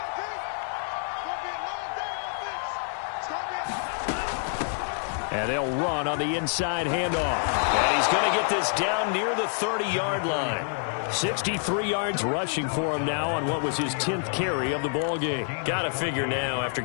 And they'll run on the inside handoff. And he's going to get this down near the 30-yard line. 63 yards rushing for him now on what was his 10th carry of the ball game. Got to figure now, after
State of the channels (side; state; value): right; silent; 60 dB below the other